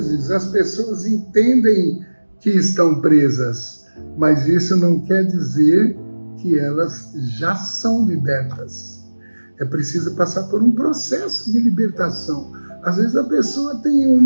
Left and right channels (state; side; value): inverted; both; correlation -1.00